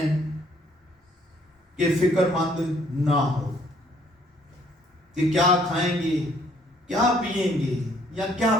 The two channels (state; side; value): normal; both; correlation 0.64